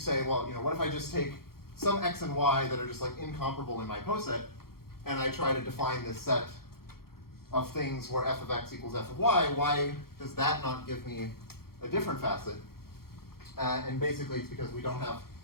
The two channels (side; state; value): right; late; 0.94 ms